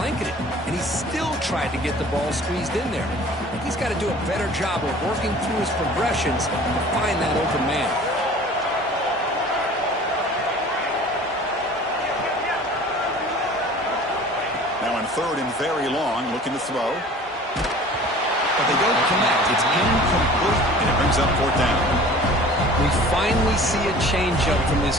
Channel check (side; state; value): both; normal; correlation 0.45